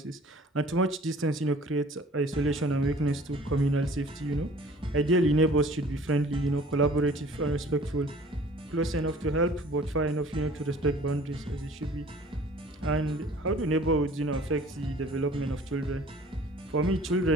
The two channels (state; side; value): normal; both; correlation 0.49